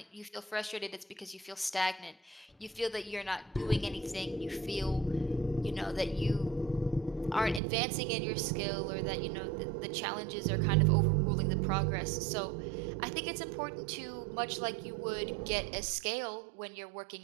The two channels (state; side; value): drops out; left; at 7.6 s